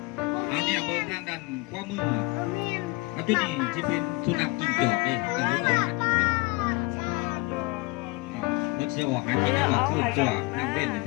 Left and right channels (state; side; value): quieter; right; 25.0 dB